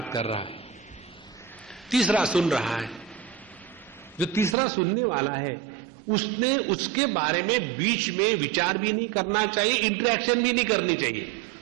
कर रहा है, तीसरा सुन रहा है। जो तीसरा सुनने वाला है उसने उसके बारे में बीच में विचार भी नहीं करना चाहिए, इंटरेक्शन भी नहीं करनी चाहिए।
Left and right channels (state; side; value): drops out; left; at 4.5 s